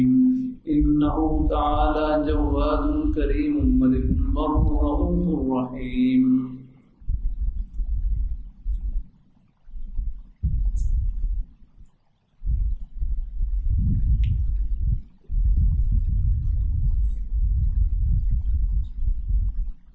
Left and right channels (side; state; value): both; identical; correlation 1.00